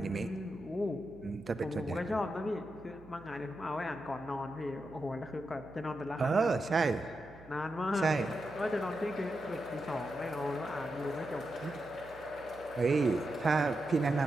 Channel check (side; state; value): right; noise; hum, 21 dB below the sound